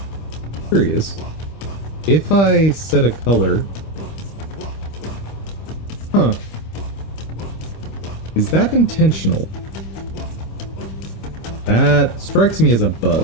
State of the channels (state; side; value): late; right; 25 ms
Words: Curious. If I set a color... Huh. Is that intentional? That strikes me as a